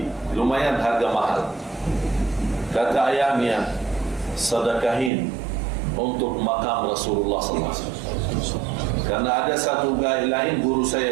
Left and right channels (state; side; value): drops out; left; at 5.1 s